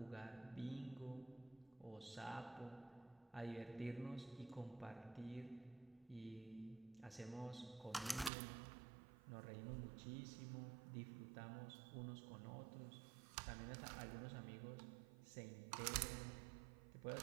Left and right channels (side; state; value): left; drops out; at 8.3 s